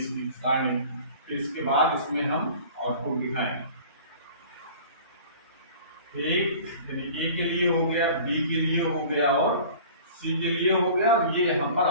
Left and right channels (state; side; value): inverted; both; correlation -0.44